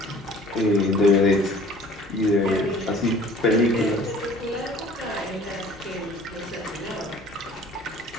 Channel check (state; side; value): normal; both; correlation 0.50